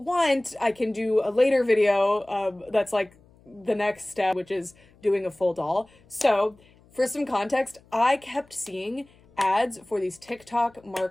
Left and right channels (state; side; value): noise; left; hum, 29 dB below the sound